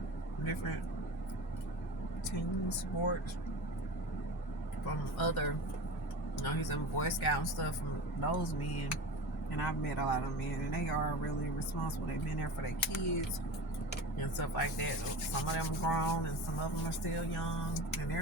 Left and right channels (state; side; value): normal; both; correlation 0.32